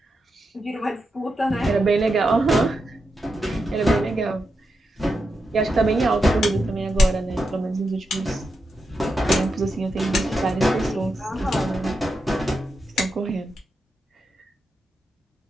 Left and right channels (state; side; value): normal; both; correlation 0.87